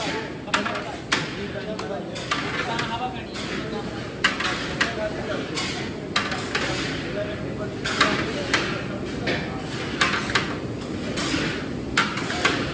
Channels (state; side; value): identical; both; correlation 1.00